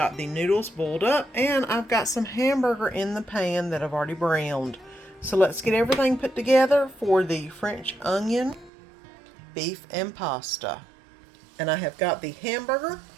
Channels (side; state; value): left; drops out; at 8.7 s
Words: the noodles boiled up. And I've got some hamburger in the pan that I've already browned. So let's get everything put together for the French onion beef and pasta. And I have got the hamburger